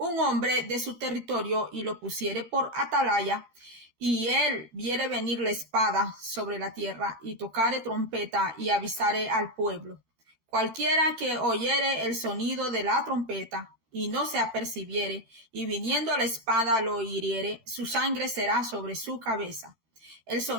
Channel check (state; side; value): late; left; 12 ms